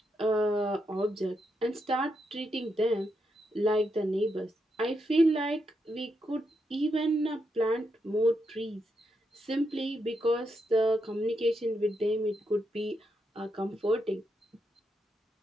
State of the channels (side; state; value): both; normal; correlation 0.82